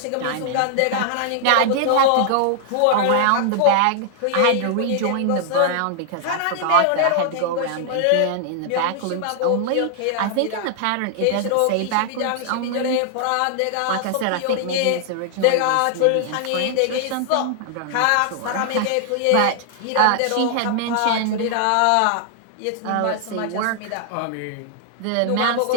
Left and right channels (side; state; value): both; different; correlation 0.00